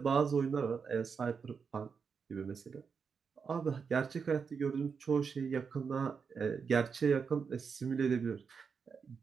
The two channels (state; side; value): quieter; left; 5.9 dB